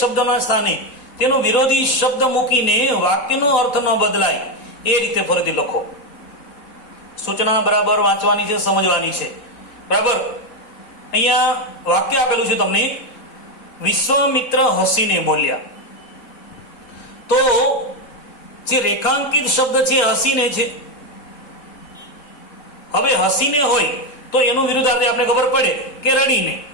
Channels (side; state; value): right; late; 4.0 ms